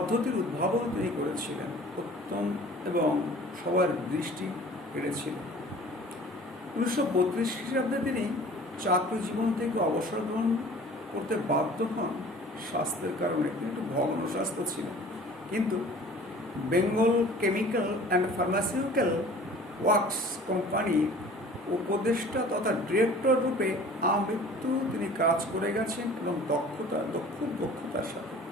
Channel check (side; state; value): both; normal; correlation 0.46